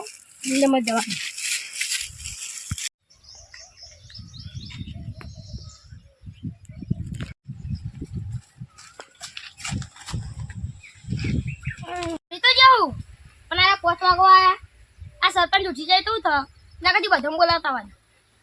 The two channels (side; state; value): both; identical; correlation 1.00